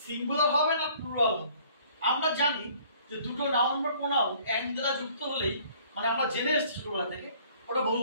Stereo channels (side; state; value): both; inverted; correlation -0.57